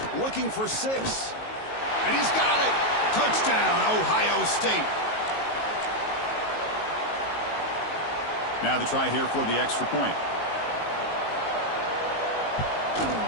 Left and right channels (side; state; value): right; late; 19 ms